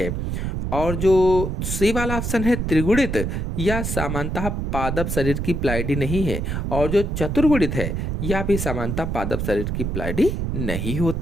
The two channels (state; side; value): noise; right; rumble, 2 dB below the sound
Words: और जो सी वाला ऑप्शन है त्रिगुणित, यह सामान्यतः पादप शरीर की प्लाइडी नहीं है। और जो चतुर्गुणित है, यह भी सामान्यतः पादप शरीर की प्लाइडी नहीं